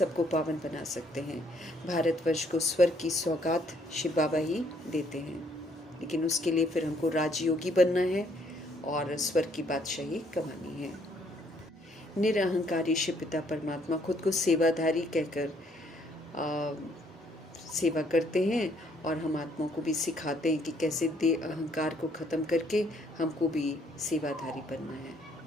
पावन बना सकते हैं। भारतवर्ष को स्वर्ग की सौगात शिव बाबा ही देते हैं, लेकिन उसके लिए फिर हमको राजयोगी बनना है और स्वर्ग की बादशाही कमानी है। निरअहंकारी शिव पिता परमात्मा खुद को सेवाधारी कहकर सेवा करते हैं और हम आत्माओं को भी सिखाते हैं कि कैसे अहंकार को ख़त्म करके हमको भी सेवाधारी बनना है।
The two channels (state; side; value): normal; both; correlation 0.67